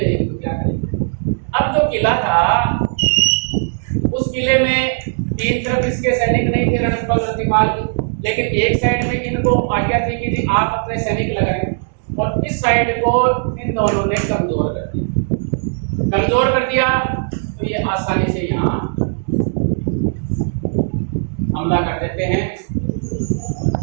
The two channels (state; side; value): silent; left; digital silence